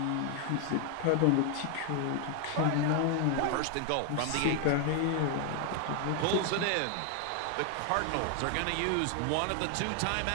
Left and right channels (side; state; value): both; different; correlation 0.00